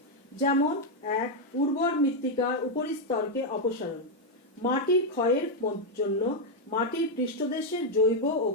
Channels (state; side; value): normal; both; correlation 0.01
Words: যেমন 1. উর্বর মৃত্তিকার উপরিস্তরকে অপসারণ। মাটির ক্ষয়ের জন্য মাটির পৃষ্ঠদেশের জৈব ও